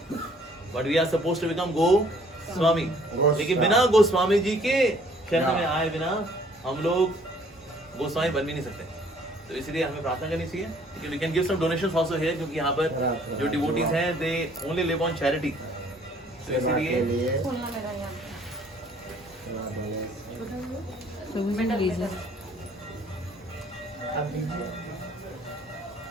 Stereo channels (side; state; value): both; normal; correlation 0.59